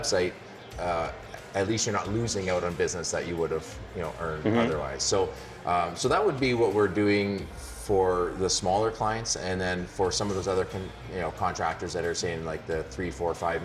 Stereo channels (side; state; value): both; identical; correlation 1.00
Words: at least you're not losing out on business that you would have earned otherwise. So that would be what we're doing for the smaller clients, and then for some of those other contractors that are saying like the $3, $4, $5